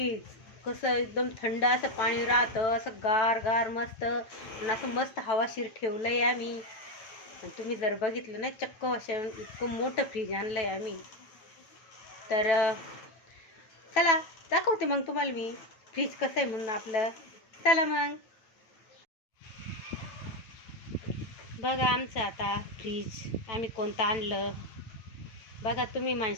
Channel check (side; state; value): right; late; 9.0 ms